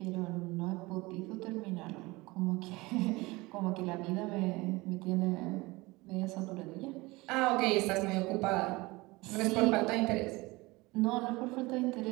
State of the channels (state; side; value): quieter; left; 22.2 dB